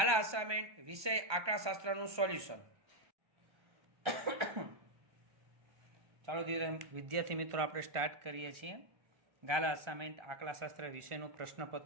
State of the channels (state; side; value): late; left; 1.2 ms